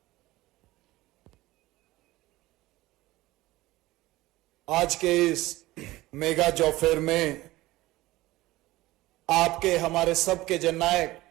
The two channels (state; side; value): quieter; left; 18.2 dB